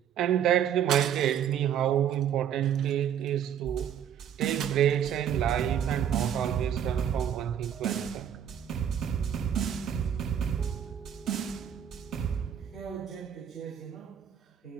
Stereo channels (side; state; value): left; quieter; 9.2 dB